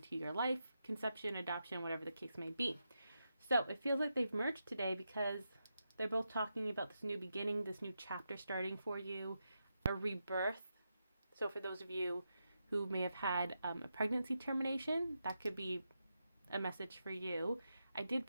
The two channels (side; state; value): both; inverted; correlation -0.86